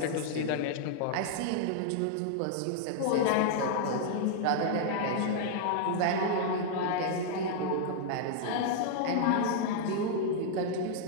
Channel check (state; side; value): different; both; correlation -0.01